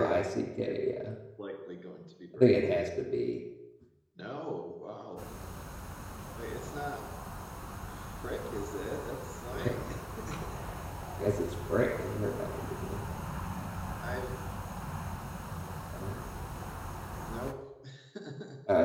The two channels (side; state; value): both; identical; correlation 1.00